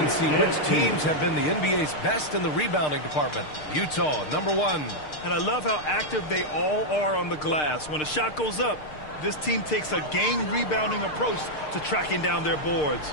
see which teams have been the NBA's best in the rebounding department. Utah, number 1. And I love how active they all are on the glass. When a shot goes up, this team takes a game rebounding approach to tracking down their boards.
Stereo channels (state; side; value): late; right; 6.6 ms